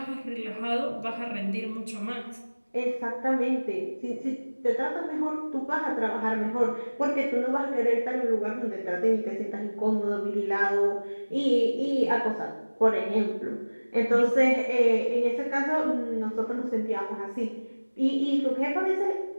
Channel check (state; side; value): inverted; both; correlation -1.00